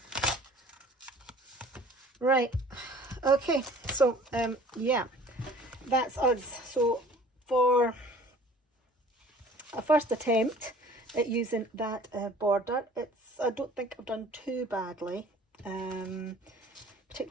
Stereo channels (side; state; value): both; normal; correlation 0.49